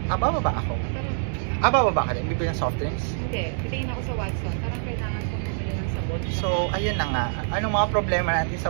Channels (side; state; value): left; silent; digital silence